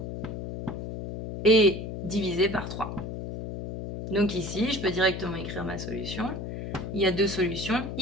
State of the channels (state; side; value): noise; left; hum, 7 dB below the sound